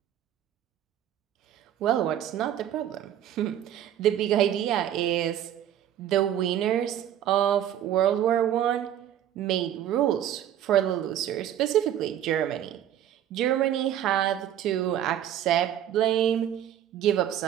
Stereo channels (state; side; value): quieter; left; 10.9 dB